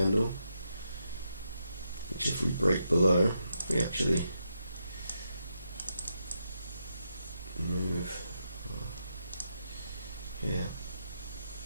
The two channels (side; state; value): both; inverted; correlation -0.82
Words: which if we break below, we actually move here.